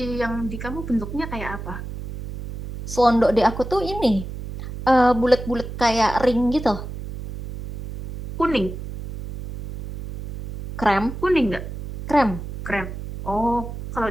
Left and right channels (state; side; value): noise; right; hum, 9 dB below the sound